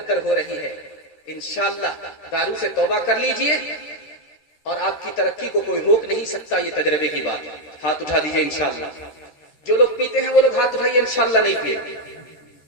ہو رہی ہے. انشاءاللہ دارو سے توبہ کر لیجئے اور آپ کی ترقی کو کوئی روک نہیں سکتا. یہ تجربے کی بات ہے. ہاتھ اٹھا دیجئے انشاءاللہ. جو لوگ پیتے ہیں وہ لوگ ہاتھ اٹھائیے، انشاءاللہ نہیں پیے.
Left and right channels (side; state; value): right; late; 14 ms